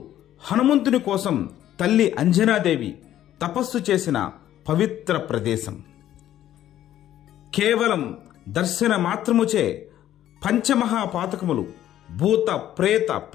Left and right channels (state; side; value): quieter; right; 12.2 dB